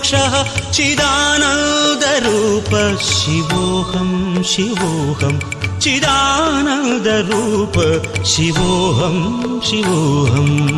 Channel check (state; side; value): identical; both; correlation 1.00